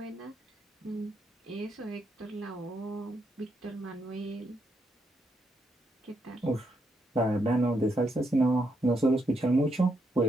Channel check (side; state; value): both; normal; correlation 0.79